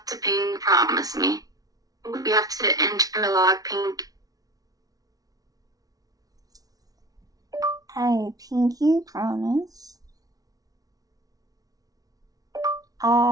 to pinky promise me. We have to interlock pink. I pinky promise.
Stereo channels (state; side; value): late; left; 0.18 ms